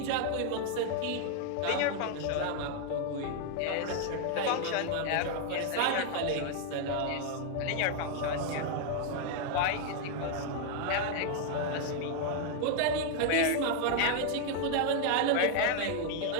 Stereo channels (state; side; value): different; both; correlation 0.00